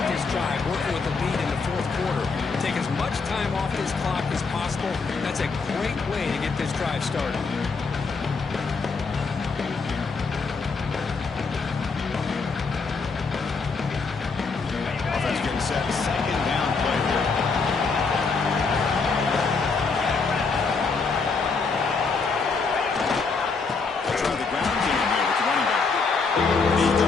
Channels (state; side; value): quieter; right; 4.6 dB